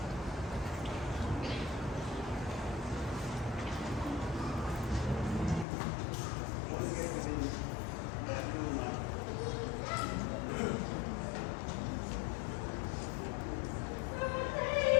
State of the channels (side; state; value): right; drops out; at 5.7 s